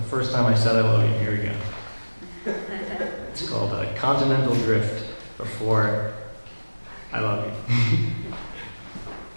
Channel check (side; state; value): both; inverted; correlation -1.00